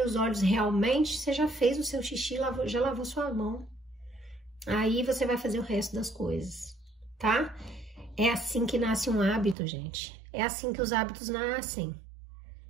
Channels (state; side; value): drops out; left; at 9.6 s